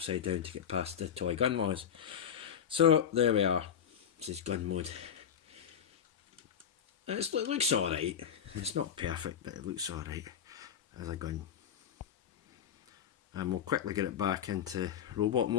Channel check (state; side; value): quieter; right; 8.5 dB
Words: down to get past the toy gun laws. So there we are. This is gun mode. It looks alright. It's not perfect, but it looks alright as a gun. And we'll quickly get it back into robot